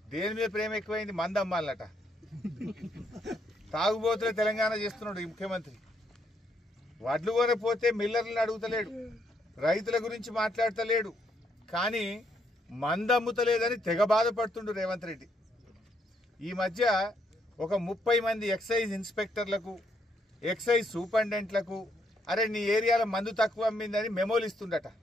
దేని మీద ప్రేమ ఎక్కువైంది? మందు అమ్మాలట. తాగుబోతులే తెలంగాణ చేస్తున్నాడు ఈ ముఖ్యమంత్రి. వడ్లు కొనపోతే మిల్లర్లను అడుగుతలేడు, రైతుల గురించి మాట్లాడతలేడు, కానీ మందు అమ్ముతలేదని తెగ బాధపడుతుండు రేవంత్ రెడ్డి. ఈ మధ్య ఒక 30 మంది ఎక్సైజ్ ఇన్స్పెక్టర్లకు, ఎక్సైజ్ సూపరింటెండెంట్లకు అరే నీ ఏరియాలో మందు తక్కువ అమ్మిందని మెమోలు ఇస్తుండట,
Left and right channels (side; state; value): both; normal; correlation 0.74